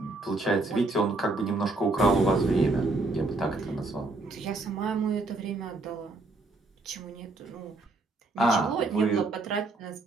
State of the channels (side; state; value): left; quieter; 3.2 dB